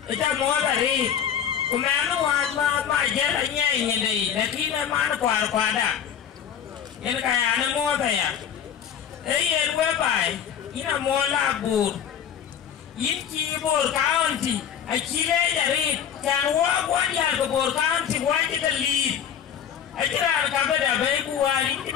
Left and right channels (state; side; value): quieter; right; 8.7 dB